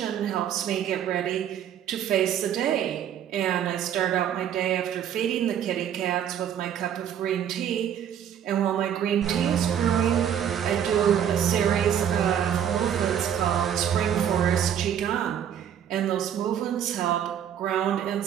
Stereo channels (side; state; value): left; quieter; 9.5 dB